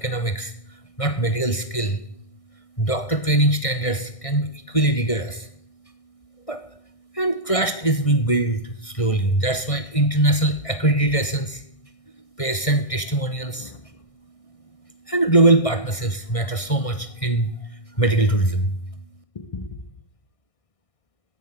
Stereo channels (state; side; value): late; right; 1.6 ms